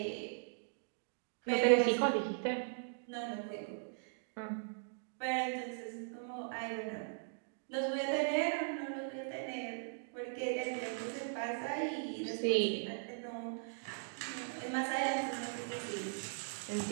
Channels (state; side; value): silent; left; digital silence